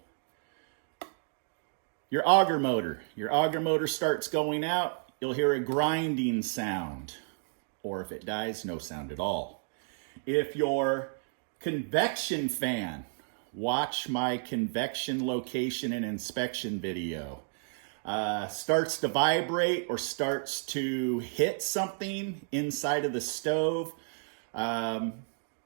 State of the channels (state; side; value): silent; left; digital silence